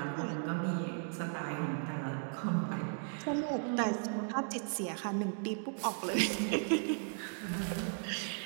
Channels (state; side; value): silent; left; 54 dB below the other